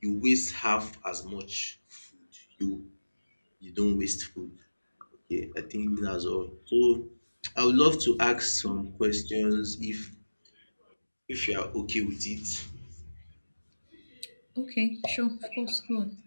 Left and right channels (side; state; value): both; inverted; correlation -1.00